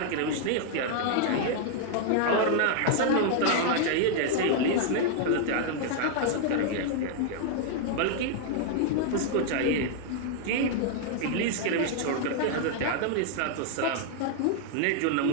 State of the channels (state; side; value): different; both; correlation 0.00